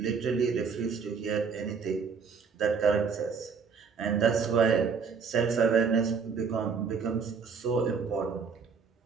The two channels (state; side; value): quieter; left; 5.7 dB